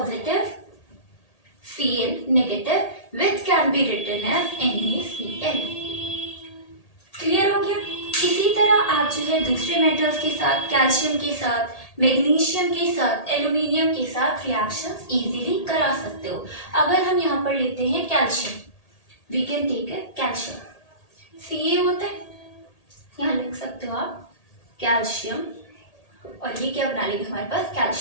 Cl negative which can be written as NaCl। Clear हो गया। इसी तरह आप जो है दूसरे मेटल्स के साथ, कैल्शियम के साथ, मैग्नीशियम के साथ, एल्यूमिनियम के साथ रिएक्शंस इजीली करा सकते हो। अगर हम यहाँ पर लेते हैं कैल्शियम, वी कैन टेक है कैल्शियम, Ca होता है, यहाँ लिख सकते हो आप कैल्शियम, और ये क्या बना लेगा हमारे पास,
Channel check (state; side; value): late; right; 1.8 ms